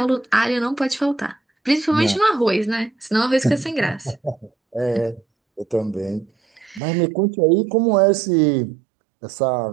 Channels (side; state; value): left; drops out; at 6.8 s